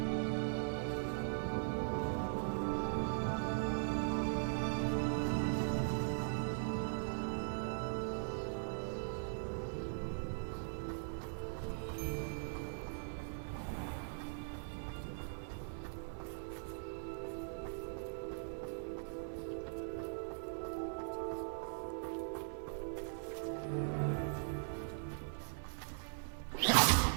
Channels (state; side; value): silent; left; digital silence